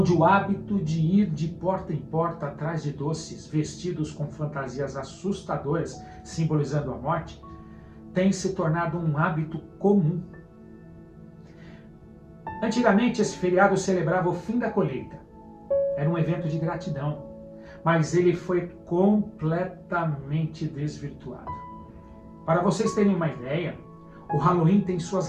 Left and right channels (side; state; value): both; identical; correlation 1.00